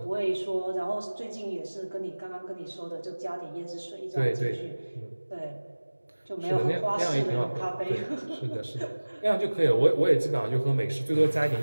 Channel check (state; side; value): inverted; both; correlation -1.00